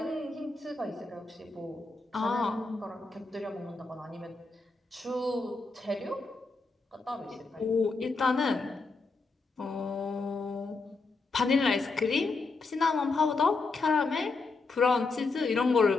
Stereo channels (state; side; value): quieter; right; 3.8 dB